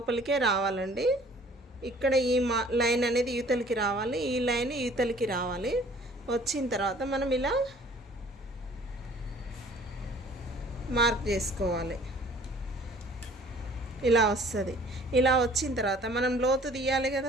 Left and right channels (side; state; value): both; normal; correlation 0.53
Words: రావాలండి. ఇక్కడ ఈ లైన్ అనేది యువతలకి రావాలి, ఈ లైన్ యువతలకి రావాలి. వచ్చిన తర్వాత మనం ఇలా మార్క్ చేసుకోవాలి. ఇలా వస్తుంది. ఇలా వచ్చిన తర్వాత మనం లోతు తీయాలి